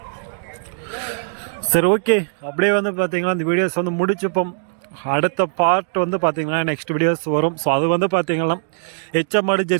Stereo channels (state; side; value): silent; left; digital silence